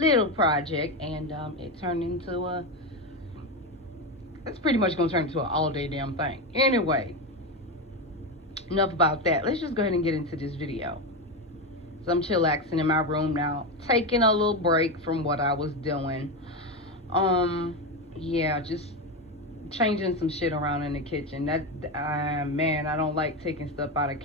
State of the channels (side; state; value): both; normal; correlation 0.14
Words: project, and it turned into it's pretty much going to turn into an all-day damn thing. Anyway, enough about that. Let's just go ahead and get into this video. So I'm chillaxing in my room now, taking a little break from what I was doing. Yeah, just changing some shit around in the kitchen. Man, I don't like taking stuff out of